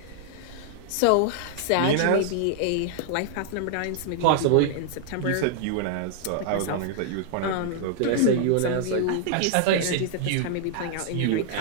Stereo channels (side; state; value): both; different; correlation -0.01